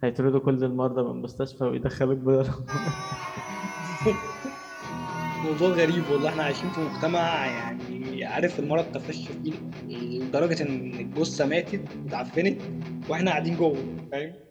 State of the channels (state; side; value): identical; both; correlation 1.00